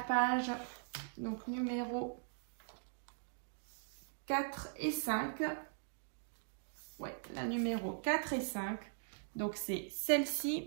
page donc numéro 4 et 5. Ouais, la numéro 4 et 5. Donc c'est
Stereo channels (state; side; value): silent; left; digital silence